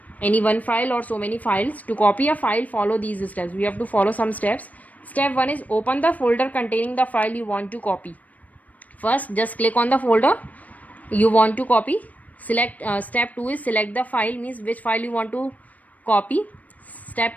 any one file or so many files. To copy a file, follow these steps. We have to follow some steps. Step 1 is open the folder containing the file you want to copy. First, just click on the folder you want to copy. Step 2 is select the file, means which file you want to copy.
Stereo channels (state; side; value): late; right; 0.073 ms